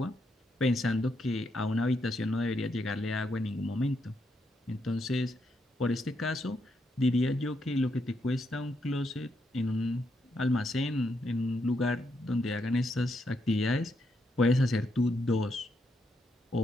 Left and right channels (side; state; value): both; normal; correlation 0.79